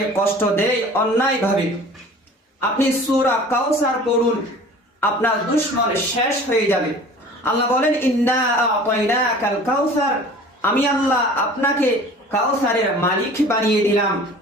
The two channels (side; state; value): both; normal; correlation 0.44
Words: কষ্ট দেয় অন্যায়ভাবে, আপনি সূরা কাউসার পড়ুন, আপনার দুশমন শেষ হয়ে যাবে। আল্লাহ বলেন, ইন্না আ'তাইনাকাল কাউসার, আমি আল্লাহ আপনাকে কাউসারের মালিক বানিয়ে দিলাম